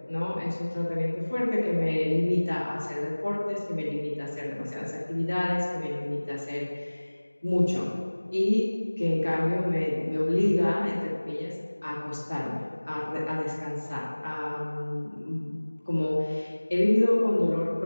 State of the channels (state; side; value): inverted; both; correlation -1.00